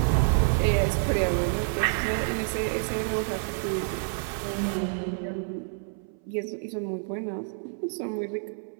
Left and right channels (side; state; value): left; silent; 59 dB below the other